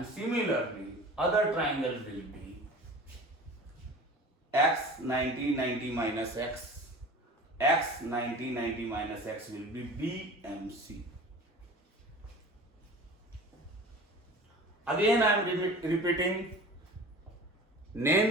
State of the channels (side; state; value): both; normal; correlation 0.40